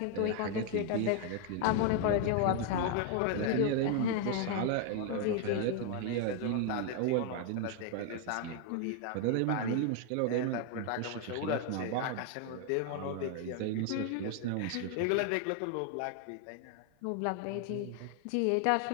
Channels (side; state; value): both; different; correlation 0.00